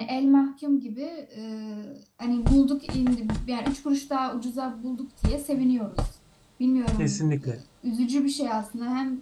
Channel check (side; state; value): both; identical; correlation 1.00